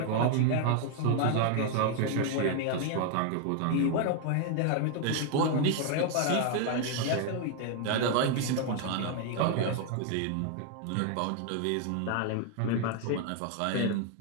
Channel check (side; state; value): both; different; correlation 0.00